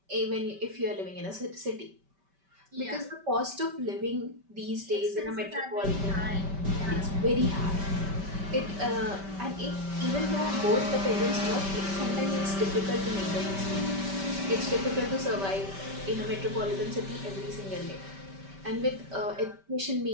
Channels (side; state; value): left; late; 5.1 ms